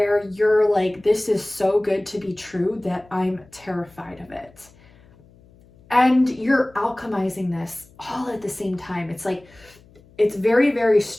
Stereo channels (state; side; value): noise; left; hum, 27 dB below the sound